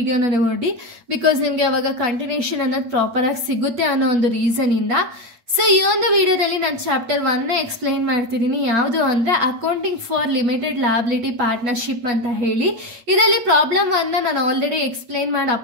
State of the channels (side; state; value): left; late; 8.8 ms